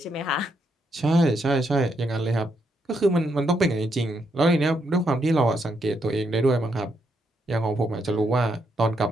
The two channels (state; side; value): normal; both; correlation 0.78